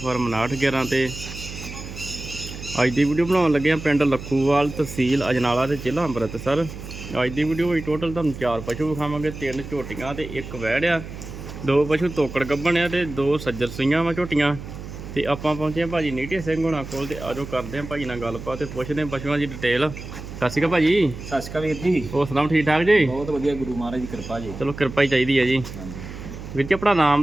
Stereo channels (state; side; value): noise; right; hum, 11 dB below the sound